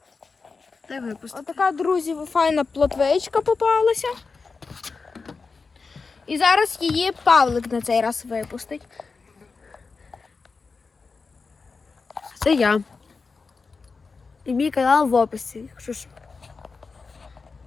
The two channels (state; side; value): quieter; right; 4.5 dB